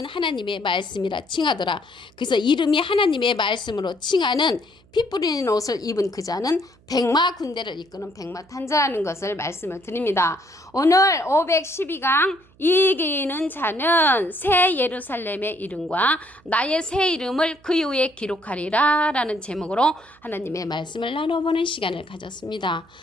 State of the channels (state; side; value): noise; right; hum, 30 dB below the sound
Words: 하나님의 말씀이라 칭하더라. 그래서 이름이 하나님의 말씀으로 칭하는 피 뿌린 옷을 입은 그 자는 백마 군대를 이끄는 백마탄자라는 것을 말씀을 드립니다. 오늘 512강 이기는 자는 새 예루살렘의 이름과 나의 새 이름을 그 이후에 기록하리라 라는 제목으로 하나님의 말씀을 나눠보는 시간을 가졌습니다.